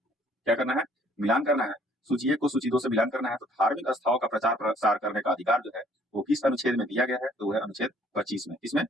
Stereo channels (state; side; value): normal; both; correlation 0.60